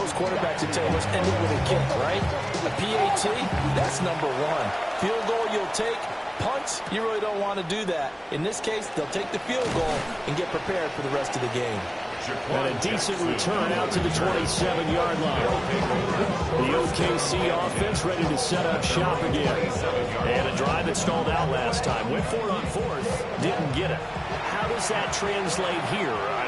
quarterbacks would tell you, let's end it with a kick, right? A PAT, that's number 1. Field goal you'll take. Punts, you really don't want to do that. In this case, they'll take the field goal and get prepared for the rest of the game. And a decent return out to the 27-yard line. The OKC offense ready to set up shop again. And a drive that stalled out last time. Went for it on 4th, didn't get it. How does that translate here?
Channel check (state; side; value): identical; both; correlation 1.00